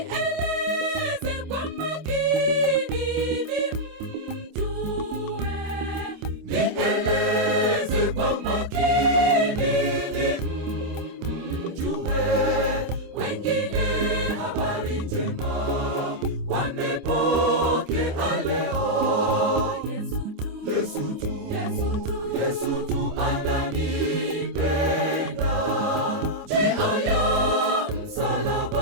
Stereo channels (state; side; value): late; left; 26 ms